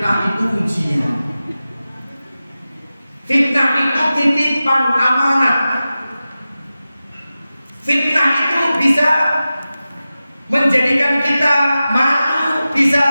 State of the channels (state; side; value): inverted; both; correlation -0.95